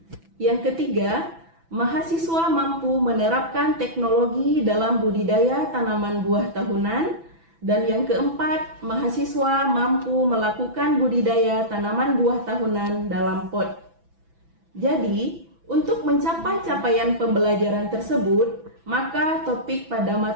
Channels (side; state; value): left; late; 6.0 ms